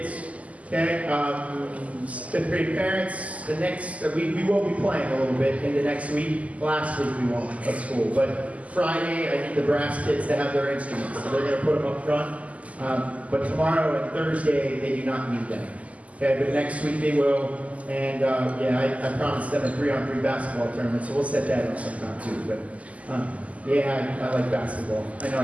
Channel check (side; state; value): left; late; 0.070 ms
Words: Okay, fifth grade parents, we will be playing a little bit into next week. Last week we won't at school, but Friday I need the brass kids to have their instruments, so they're going to put them up front. But tomorrow and Thursday they do not need them. Okay, but next week they will, and yeah, I promised them a 3-on-3 basketball tournament, so we'll set that up sometime too. But yeah, I like basketball. I know